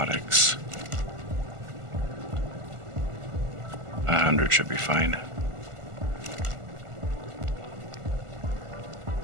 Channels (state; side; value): late; left; 1.4 ms